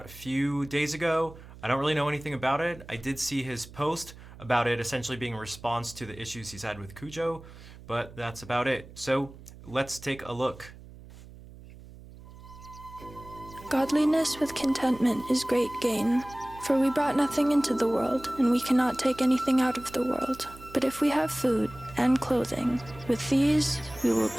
a few days ago. I don't really know anything about it. I did see his post about it essentially being a response to the issues he's had with Cujo, but that's about it. So let's take a look. Godliness with contentment is great gain, for we brought nothing into the world, and we cannot take anything out of the world. But if we have food and clothing, with these we will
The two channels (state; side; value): noise; right; hum, 18 dB below the sound